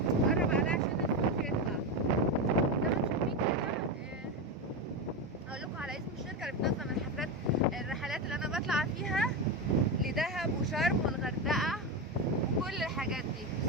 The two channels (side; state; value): both; normal; correlation 0.15